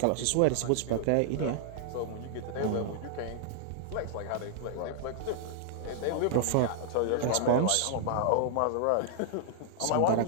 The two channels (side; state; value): both; different; correlation -0.01